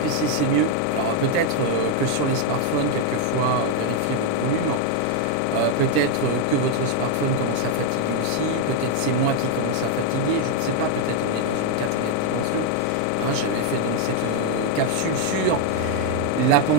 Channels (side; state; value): both; different; correlation 0.01